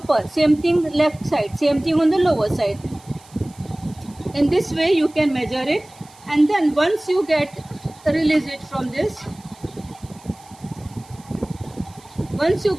same thing left side, same thing on the lower side. In this way you can measure it, and then once you release it from this, once you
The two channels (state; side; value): noise; right; hiss, 25 dB below the sound